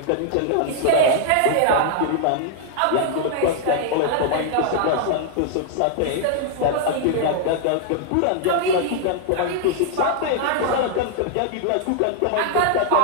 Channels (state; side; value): different; both; correlation 0.00